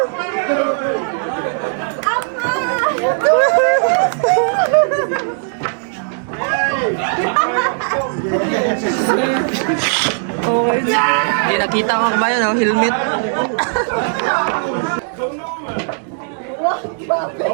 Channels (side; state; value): left; silent; digital silence